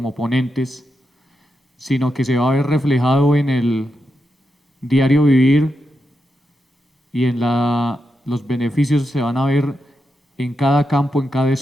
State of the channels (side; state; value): both; normal; correlation 0.86